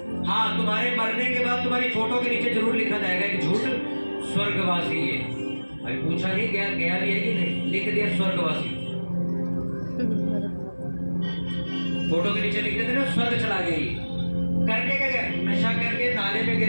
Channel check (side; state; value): both; inverted; correlation -1.00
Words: हाँ, तुम्हारे मरने के बाद तुम्हारी फोटो के नीचे जरूर लिखा जाएगा कि झूठ स्वर्गवासी है। अभी पूछा नहीं गया भी है कि नहीं, लिख दिया स्वर्गवासी। फोटो के नीचे लिख देते ना स्वर्ग चला गई। करके क्या गया? नशा करके नाले में